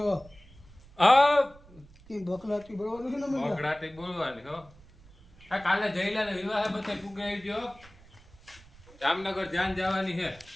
હા કે બકલાતી બોલવાનું છે ને મને બકડાટી બોલવાની હો આ કાલે જઈલા ને વિવાહ બધે પુગાઈ ગયો જામનગર ધ્યાન જવાની છે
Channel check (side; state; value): right; noise; rumble, 23 dB below the sound